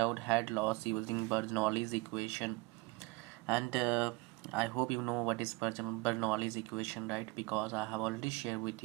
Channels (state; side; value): quieter; left; 25.0 dB